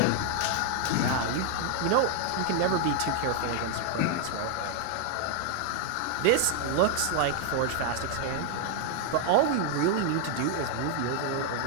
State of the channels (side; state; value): both; different; correlation 0.00